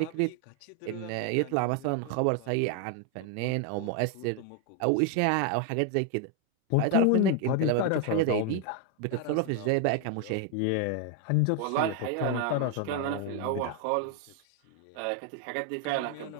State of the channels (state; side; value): different; both; correlation 0.01